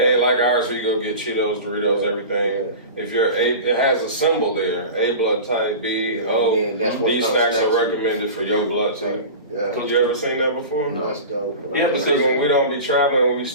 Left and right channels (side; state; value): both; inverted; correlation -0.33